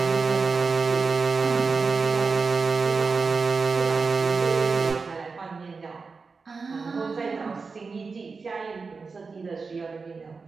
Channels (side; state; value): left; quieter; 4.6 dB